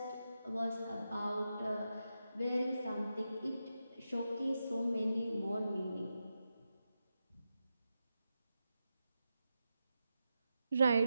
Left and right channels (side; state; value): both; inverted; correlation -0.89